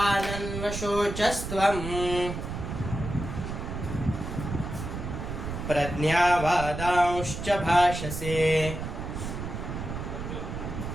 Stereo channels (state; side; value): noise; right; rumble, 6 dB below the sound